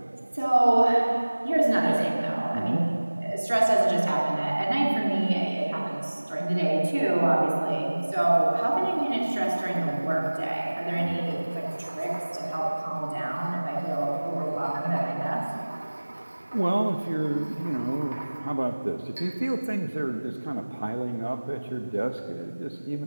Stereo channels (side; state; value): both; inverted; correlation -1.00